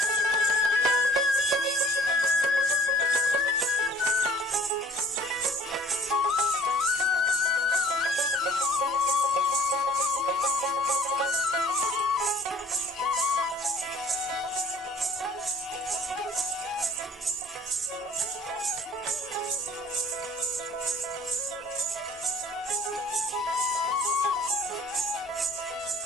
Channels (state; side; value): normal; both; correlation 0.52